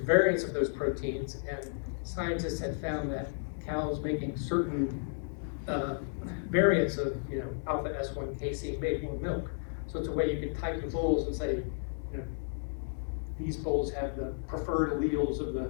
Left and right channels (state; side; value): silent; right; digital silence